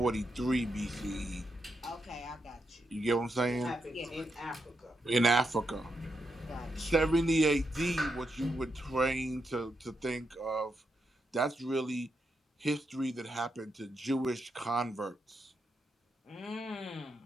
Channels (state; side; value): normal; both; correlation 0.83